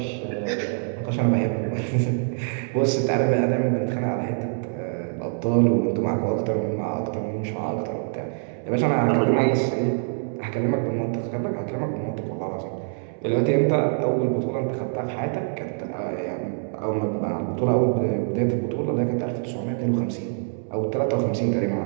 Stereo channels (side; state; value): left; silent; 62 dB below the other